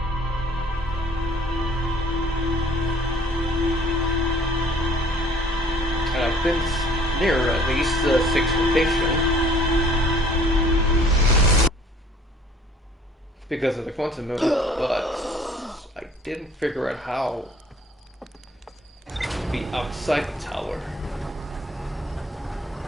And I've been near at least the 6th location. Because of the quantum movement, but I didn't figure out how to be outside the tower.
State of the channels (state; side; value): normal; both; correlation 0.56